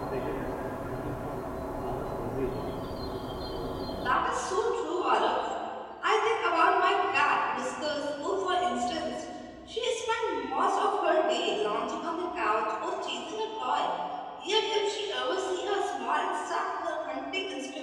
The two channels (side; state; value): both; identical; correlation 1.00